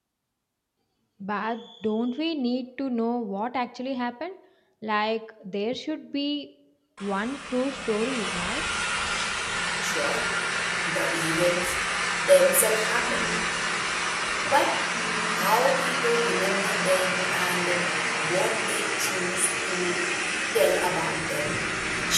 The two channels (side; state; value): both; identical; correlation 1.00